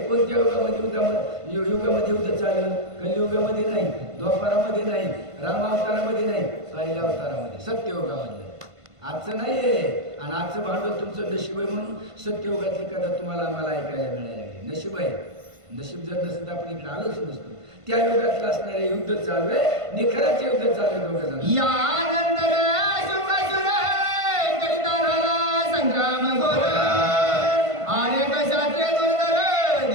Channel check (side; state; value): left; late; 1.5 ms